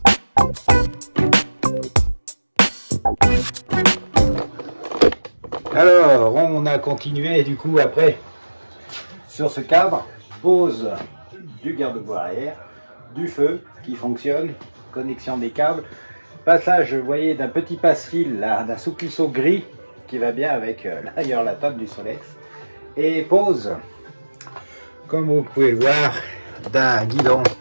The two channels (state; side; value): inverted; both; correlation -1.00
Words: Alors, on a continué du coup après sur ce cadre, pose du garde-boue arrière, du feu qui fonctionne, connexion des câbles, passage, vous voyez, d'un petit passe-fil, d'un souplisseau gris qui va bien avec d'ailleurs la table du Solex, et pose, comme vous pouvez le voir, d'un guidon,